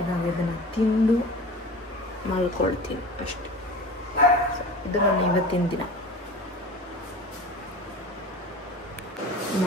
ಇದನ್ನು ತಿಂದು ಮಲ್ಕೊಳ್ತೀನಿ ಅಷ್ಟೆ. ಇದು ನನ್ನ ಇವತ್ತಿನ ದಿನ.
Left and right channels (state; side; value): normal; both; correlation 0.37